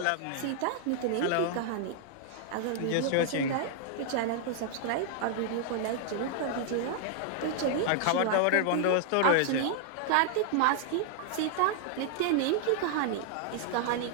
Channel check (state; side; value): different; both; correlation -0.01